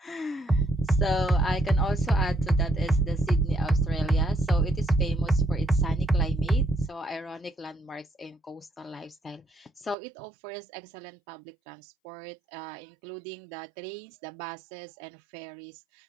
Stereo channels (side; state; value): left; drops out; at 10.0 s